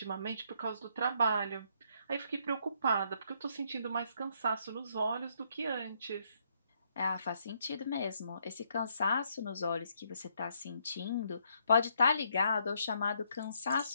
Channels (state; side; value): inverted; both; correlation -0.72